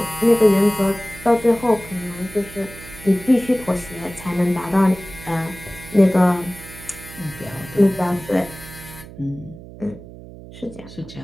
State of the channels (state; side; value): noise; right; hum, 16 dB below the sound